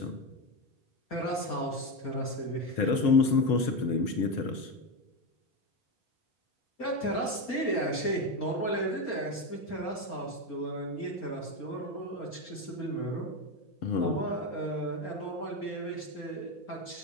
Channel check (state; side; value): late; right; 4.3 ms